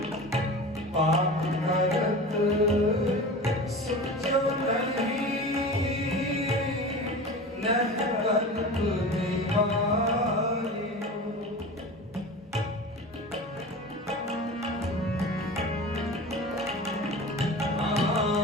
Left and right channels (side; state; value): both; normal; correlation 0.33